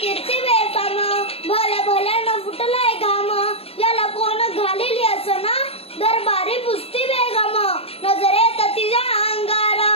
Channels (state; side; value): late; right; 0.28 ms